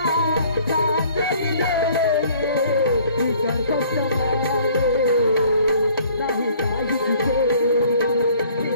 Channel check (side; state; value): both; inverted; correlation -0.56